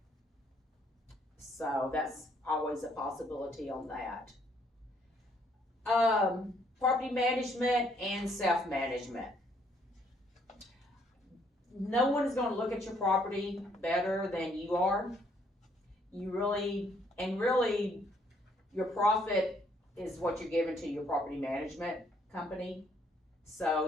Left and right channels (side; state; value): both; normal; correlation 0.67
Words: So that's always a possibility on that. Property management and self-management. No one is going to look at your property better than you are. Really, your profit is what you're giving to your property management company.